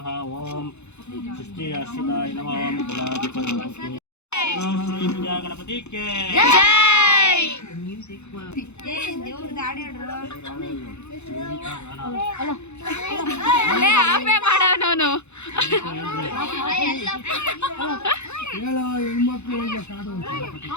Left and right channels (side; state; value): right; late; 0.81 ms